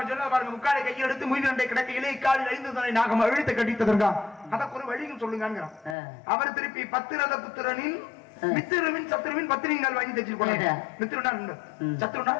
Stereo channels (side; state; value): right; drops out; at 6.0 s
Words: சொன்ன பாருங்க, முக்காலை கையை எடுத்து முயல் கிடக்கையிலே இக்காலில் 5 தலை நாகம் அழுத்த கட்டித்ததற்கா அதற்கு ஒரு வழியும் சொல்லுங்க. அவர் திருப்பி பத்திரத புத்திரனின் மித்திரவின் சத்ருவின் பத்திரிகால் வாங்கி தச்சு போனாங்க. மித்திரனா சத்ருனா